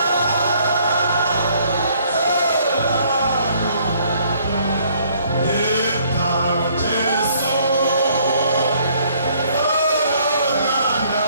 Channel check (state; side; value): inverted; both; correlation -0.63